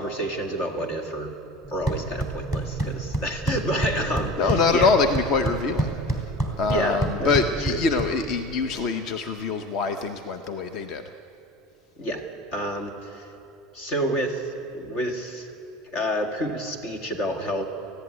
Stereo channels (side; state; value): both; normal; correlation 0.36